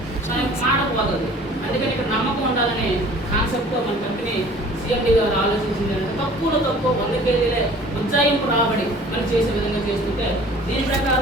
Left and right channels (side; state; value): both; normal; correlation 0.48